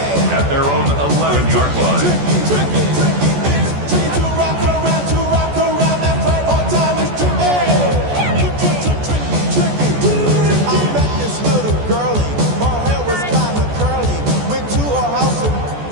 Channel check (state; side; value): late; left; 14 ms